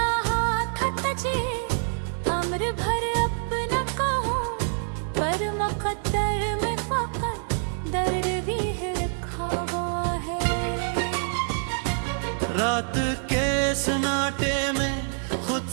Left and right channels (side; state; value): left; silent; digital silence